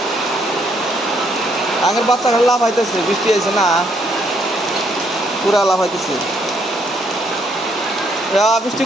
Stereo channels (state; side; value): normal; both; correlation 0.71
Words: আগের বাচ্চা লাভ হইতেছে, বৃষ্টি আইছে না, পুরা লাভ হইতেছে। বৃষ্টি